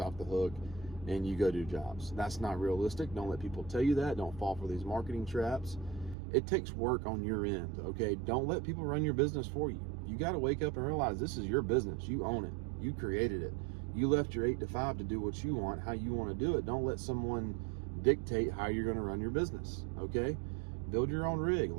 the hook and you go do jobs. That's not realistic. Don't let people tell you that. Don't fall for these marketing traps. It takes work on your end, okay? Don't let people run your business for you. You got to wake up and realize this is your business. You own it. You created it. You left your 8 to 5 to do what you want, how you want to do it. Don't let someone dictate how you're going to run your business, okay? Build your own rig.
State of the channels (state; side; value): drops out; left; at 6.2 s